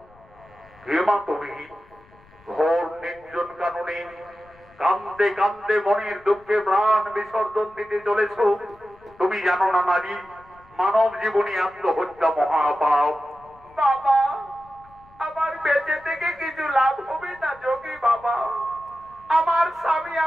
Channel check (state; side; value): noise; left; rumble, 27 dB below the sound